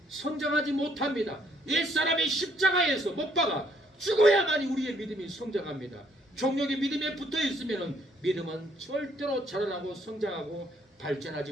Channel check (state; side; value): normal; both; correlation 0.68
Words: 성장하지 못합니다. 옛사람이 십자가에서 못 박아 죽어야만이 우리의 믿음이 성장합니다. 종력이 믿음에 붙어 있으면 믿음은 절대로 자라나고 성장하고 발전하지